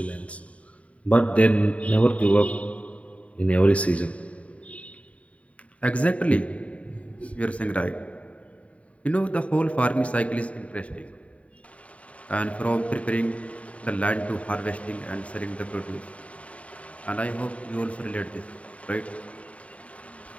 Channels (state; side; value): late; right; 0.065 ms